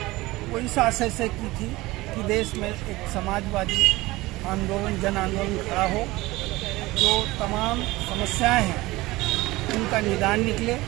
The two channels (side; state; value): left; quieter; 19.8 dB